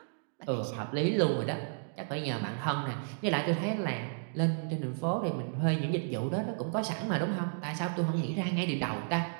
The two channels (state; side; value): silent; left; digital silence